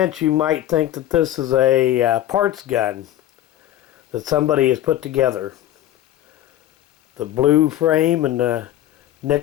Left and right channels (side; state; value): right; quieter; 13.0 dB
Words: you might think that this is a parts gun that somebody has put together. The blue frame and the